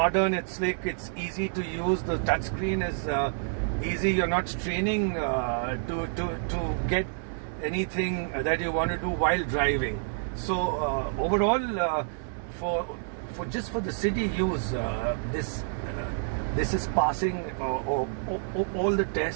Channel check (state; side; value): silent; left; digital silence